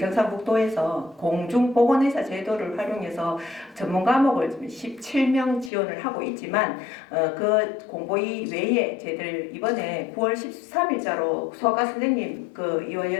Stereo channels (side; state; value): right; drops out; at 5.7 s